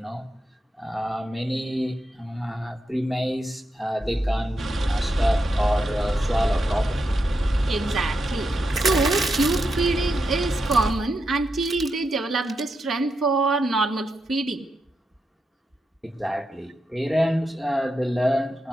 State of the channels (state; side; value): normal; both; correlation 0.85